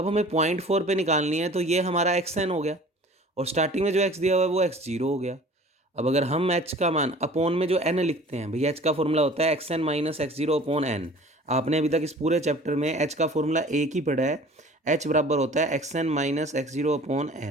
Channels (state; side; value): normal; both; correlation 0.46